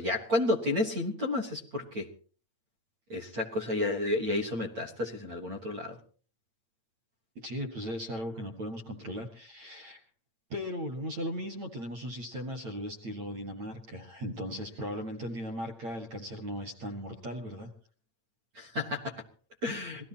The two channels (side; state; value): left; late; 8.8 ms